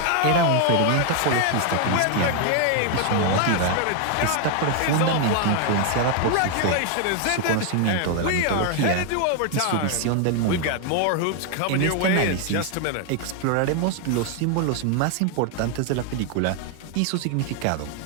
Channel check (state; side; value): different; both; correlation 0.00